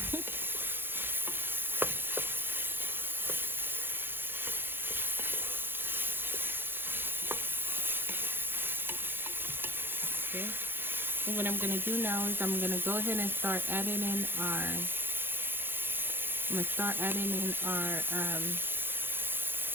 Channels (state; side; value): late; left; 0.10 ms